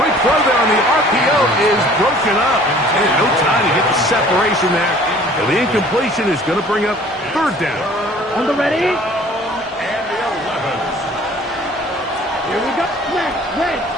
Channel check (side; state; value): both; normal; correlation 0.51